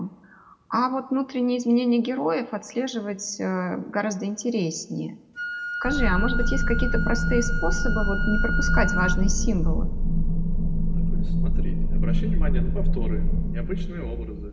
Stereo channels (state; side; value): identical; both; correlation 1.00